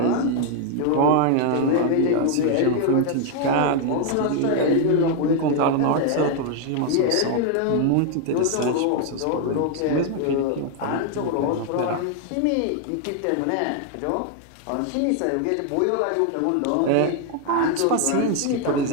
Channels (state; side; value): different; both; correlation 0.00